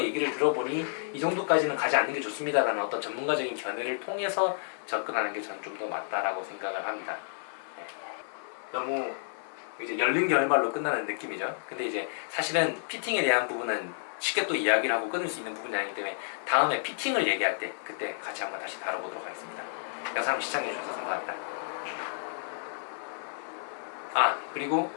얘기를 들어보니 이 정도까지는 가지 않는 게 좋습니다라는 어떤 전문가적인 견해를 통해서 접근하는 게 저는 좀 더 맞다라고 생각을 합니다. 네. 너무 이제 열린 결말로 끝나는 느낌이죠. 근데 이제 사실은 피팅에 대한 부분은 쉽게 또 이야기를 하고 끊을 수 있는 부분이 아니기 때문에 다음에 피팅을 얘기할 때 그때 같이 한번 다시 다뤄보도록 하겠습니다. 영상 시청해주셔서 감사합니다. 그리고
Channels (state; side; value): silent; right; 56 dB below the other